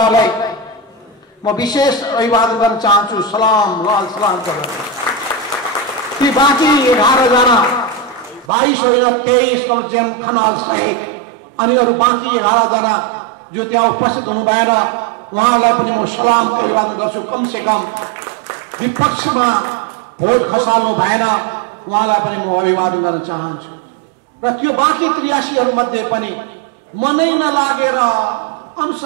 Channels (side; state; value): left; drops out; at 8.5 s